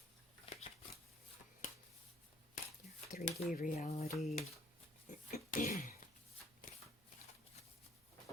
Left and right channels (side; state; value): both; normal; correlation 0.61